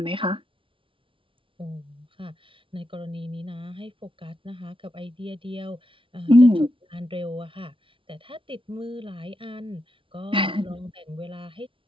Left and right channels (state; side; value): late; left; 0.25 ms